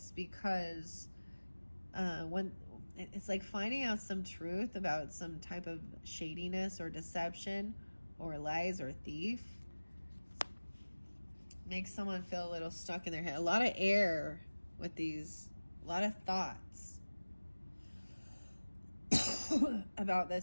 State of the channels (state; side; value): inverted; both; correlation -1.00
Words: because when it's like finding out some truth about some type of shadiness or deception or lies or thief makes someone feel a little stuck in their head. A lot of air with these, a lot of thoughts about